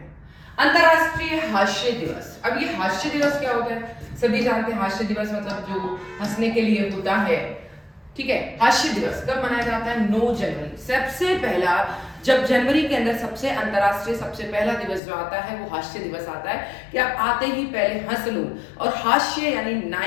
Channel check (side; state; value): right; drops out; at 15.0 s